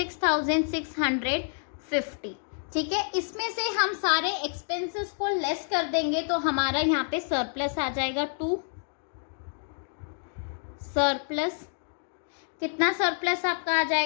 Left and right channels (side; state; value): right; silent; digital silence